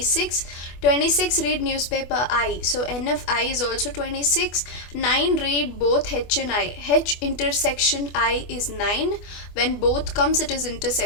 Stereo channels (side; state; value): right; late; 24 ms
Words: 26 read newspaper I. So N of I is also 26, 9 read both H and I. H intersection I is 9. When both comes it is